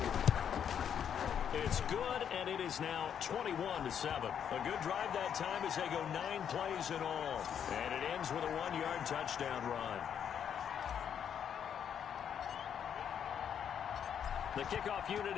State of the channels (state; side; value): quieter; right; 8.5 dB